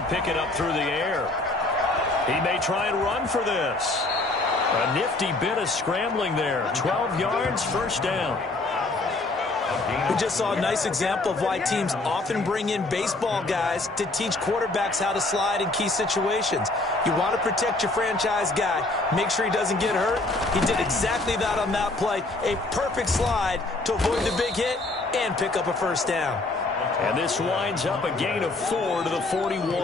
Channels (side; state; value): right; quieter; 3.0 dB